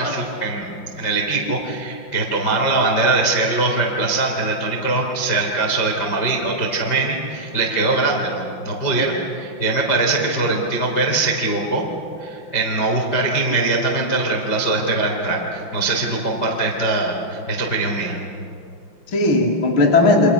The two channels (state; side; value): late; right; 5.7 ms